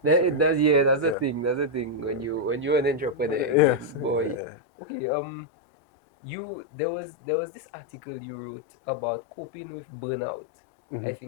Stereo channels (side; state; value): right; drops out; at 4.4 s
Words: That, So, it does, yeah, that's the yeah. thing. That's the thing when you're an entrepreneur Yes. again, boy. Yeah. Okay, there was this article you wrote about coping with burnout. I